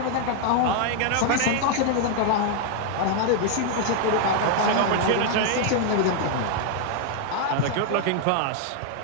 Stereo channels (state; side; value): different; both; correlation 0.00